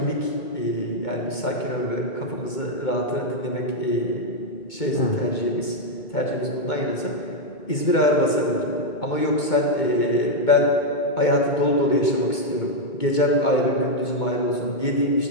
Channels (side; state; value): right; late; 2.2 ms